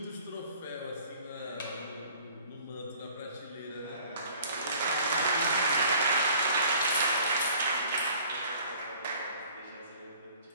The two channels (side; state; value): both; inverted; correlation -0.52